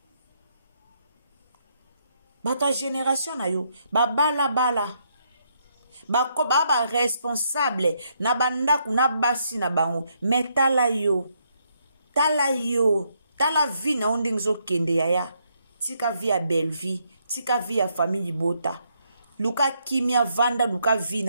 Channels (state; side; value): inverted; both; correlation -0.75